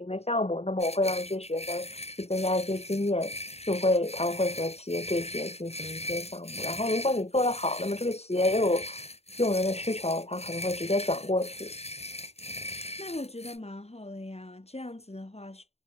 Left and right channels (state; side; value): late; right; 0.30 ms